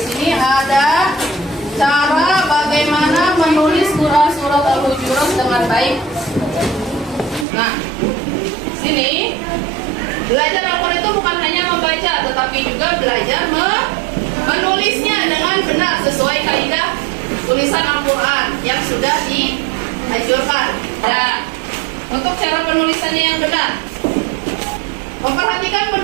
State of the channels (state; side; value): drops out; left; at 7.5 s